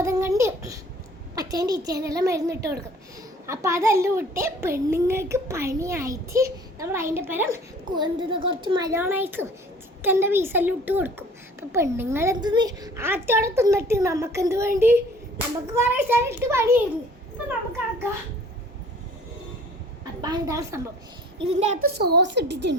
കണ്ട് അച്ഛൻ്റെ ഇച്ചേനെല്ലാം മരുന്നിട്ട് കൊടുക്കും. അപ്പം അതെല്ലാം ഇട്ട് പെണ്ണുങ്ങൾക്ക് പണിയായിട്ട് നമ്മൾ അതിൻ്റെ പരം കുറച്ച് മയോണൈസും ചിക്കൻ്റെ പീസെല്ലാം ഇട്ട് കൊടുക്കും. അപ്പം പെണ്ണുങ്ങൾ എന്തെന്ന് ആറ്റോടെ തിന്നിട്ട് നമുക്കെന്ത് വേണ്ടി, നമുക്ക് കുറേ സ്ഥലം ഇട്ട് പണിയായിരുന്നു. അപ്പം നമുക്കാക്കാം. അപ്പം ഇതാണ് സംഭവം. ഇതിൻ്റെ അകത്ത് സോസ്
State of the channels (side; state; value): both; normal; correlation 0.51